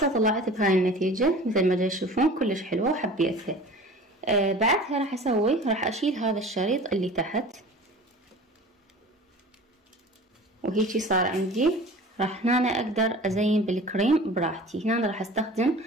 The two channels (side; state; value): both; normal; correlation 0.41